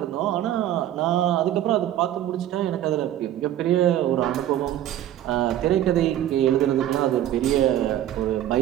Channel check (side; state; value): left; quieter; 12.2 dB